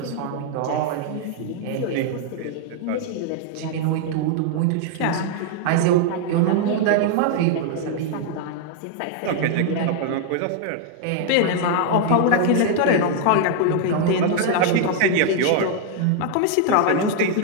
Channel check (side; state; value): both; different; correlation 0.00